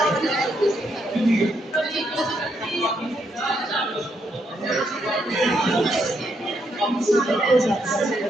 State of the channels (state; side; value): normal; both; correlation 0.77